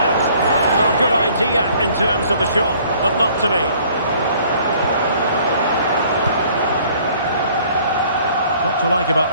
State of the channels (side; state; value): both; inverted; correlation -0.57